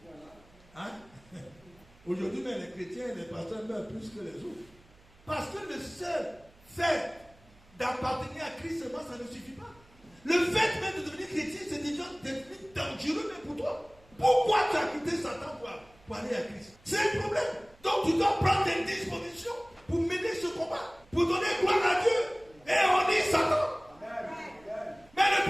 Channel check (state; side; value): noise; right; hum, 28 dB below the sound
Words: Hein? Aujourd'hui, même les chrétiens et les pasteurs meurent plus que les autres. Parce que le seul fait d'appartenir à Christ seulement, ça ne suffit pas. Le fait même de devenir chrétien, c'est déjà devenu dangereux même pour toi. Pourquoi tu as quitté Satan pour aller à Christ? C'est un problème. Donc tu dois prendre des dispositions pour mener ce combat, pour donner gloire à Dieu. Et on dit Satan. Mais